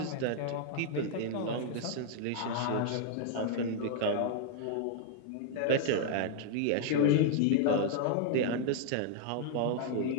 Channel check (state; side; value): different; both; correlation 0.00